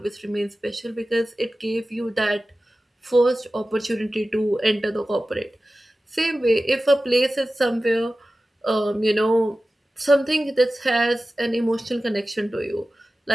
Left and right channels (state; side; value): normal; both; correlation 0.95